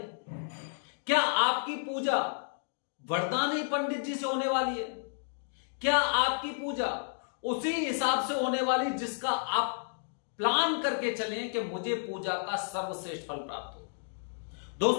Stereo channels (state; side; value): silent; right; digital silence